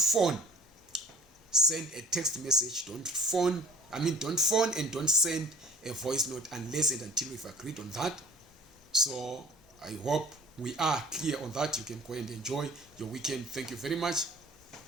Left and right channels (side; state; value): both; normal; correlation 0.47